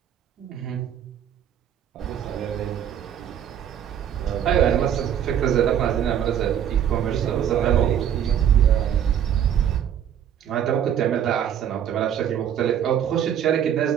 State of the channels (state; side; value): quieter; left; 9.5 dB